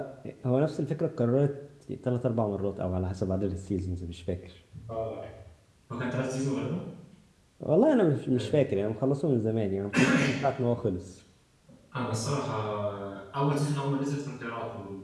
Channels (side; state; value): both; identical; correlation 1.00